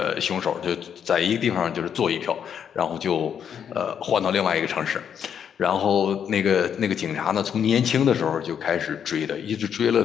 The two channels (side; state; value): right; quieter; 8.2 dB